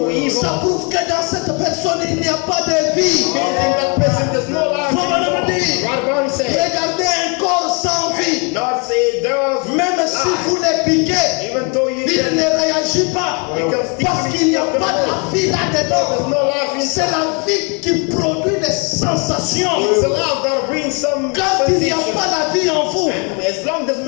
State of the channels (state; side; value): quieter; right; 34.7 dB